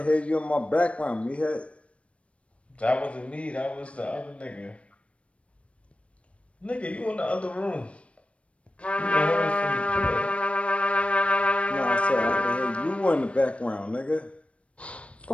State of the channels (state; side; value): late; right; 0.062 ms